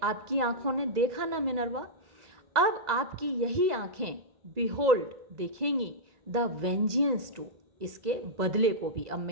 आपकी आंखों ने देखा ना मिनर्वा, अब आपकी यही आंखें बिहोल्ड, देखेंगी, द वेंजियंस टू, इसके बदले को भी। अब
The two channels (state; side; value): late; left; 2.0 ms